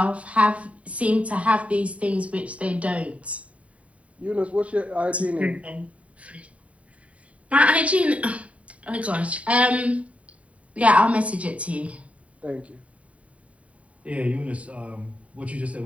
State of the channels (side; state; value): left; late; 0.066 ms